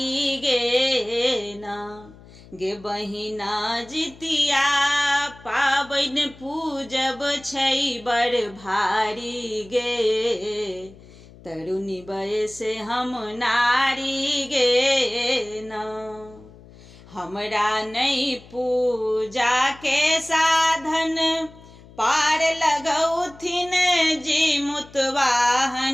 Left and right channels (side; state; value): left; noise; hum, 22 dB below the sound